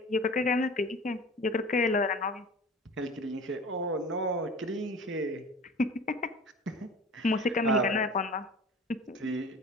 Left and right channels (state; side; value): normal; both; correlation 0.40